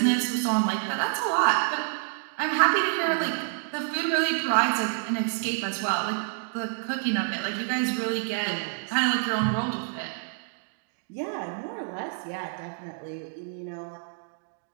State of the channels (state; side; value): silent; left; digital silence